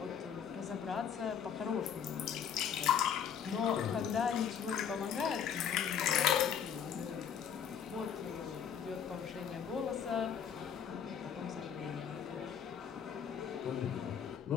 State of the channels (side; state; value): right; quieter; 8.1 dB